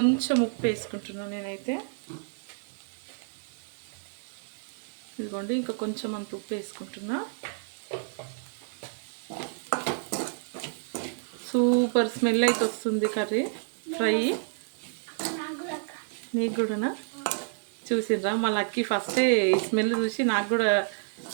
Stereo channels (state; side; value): silent; left; digital silence